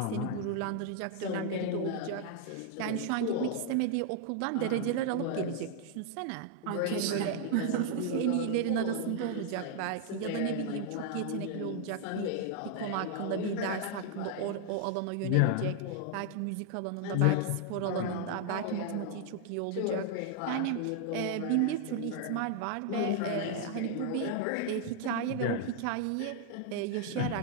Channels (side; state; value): both; different; correlation 0.00